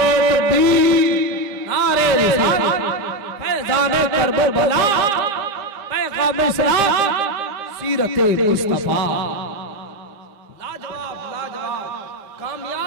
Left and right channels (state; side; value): late; left; 5.0 ms